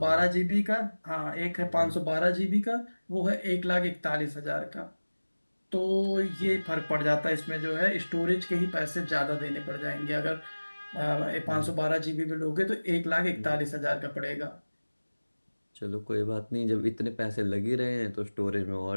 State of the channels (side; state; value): both; inverted; correlation -1.00